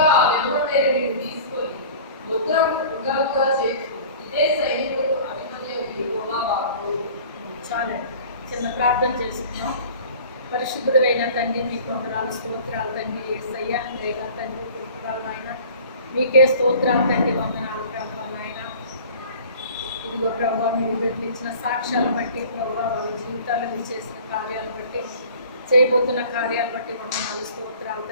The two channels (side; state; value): both; inverted; correlation -0.45